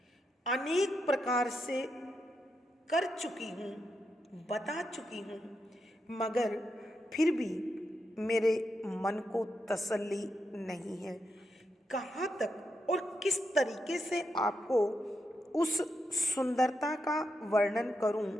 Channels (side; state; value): both; normal; correlation 0.84